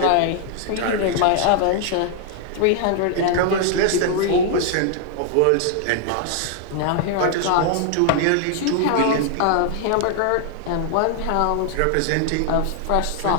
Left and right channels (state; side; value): different; both; correlation -0.01